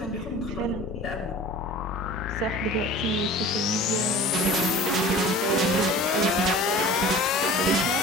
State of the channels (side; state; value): both; normal; correlation 0.41